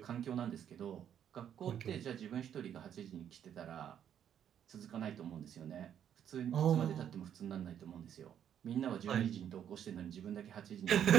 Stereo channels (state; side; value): quieter; left; 9.4 dB